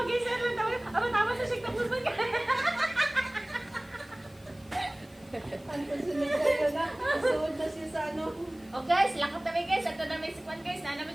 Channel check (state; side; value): noise; left; hiss, 27 dB below the sound